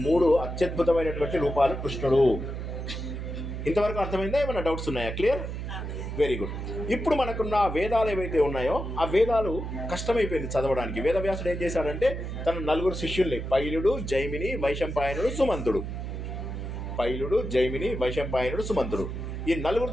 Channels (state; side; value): noise; right; hum, 5 dB below the sound